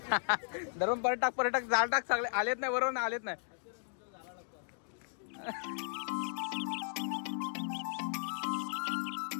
धरून पर्यटक जाळ टाक सगळे आलेत नाही, बरोबर ना, आलेत नाही.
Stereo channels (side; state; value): right; silent; digital silence